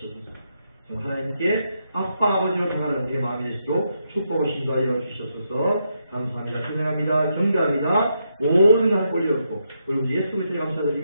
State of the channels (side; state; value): both; inverted; correlation -0.81